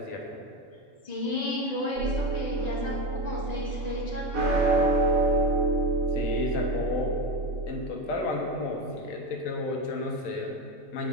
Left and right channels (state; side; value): normal; both; correlation 0.17